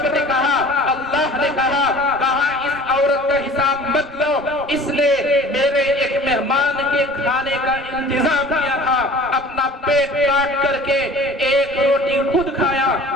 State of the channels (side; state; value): both; normal; correlation 0.45